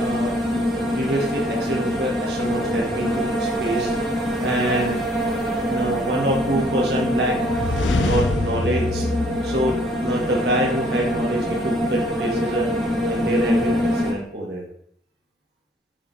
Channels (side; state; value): both; normal; correlation 0.62